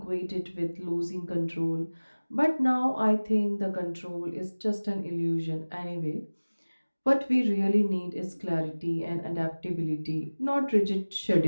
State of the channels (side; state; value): both; inverted; correlation -1.00